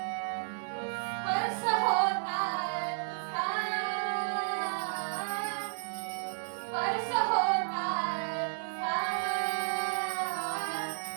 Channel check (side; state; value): left; silent; digital silence